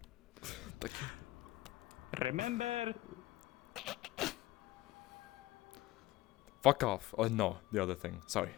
Thank you. Remember? Fuck off. Oh no, the other thing. Sorry.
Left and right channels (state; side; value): quieter; right; 17.7 dB